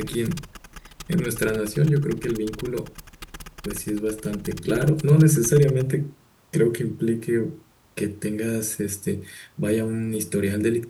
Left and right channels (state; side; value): identical; both; correlation 1.00